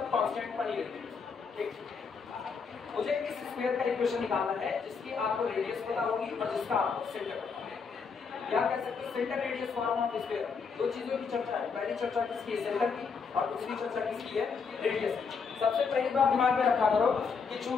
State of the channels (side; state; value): right; quieter; 5.5 dB